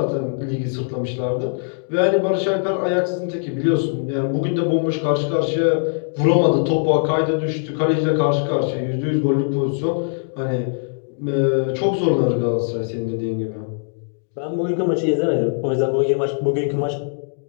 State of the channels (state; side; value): silent; right; digital silence